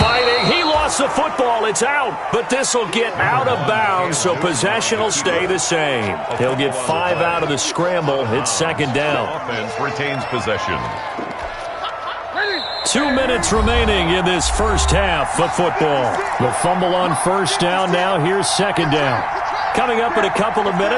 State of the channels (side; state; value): both; identical; correlation 1.00